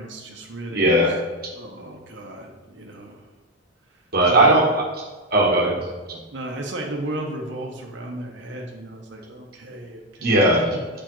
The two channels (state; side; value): normal; both; correlation 0.04